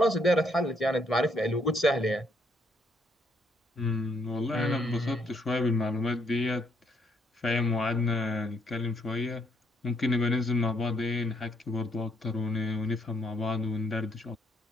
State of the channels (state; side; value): normal; both; correlation 0.72